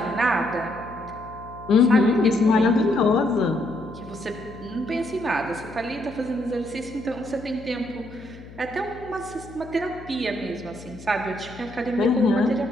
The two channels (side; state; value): left; noise; hum, 17 dB below the sound